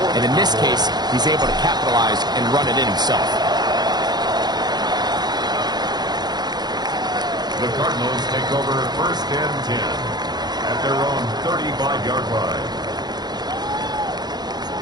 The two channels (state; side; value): late; left; 0.20 ms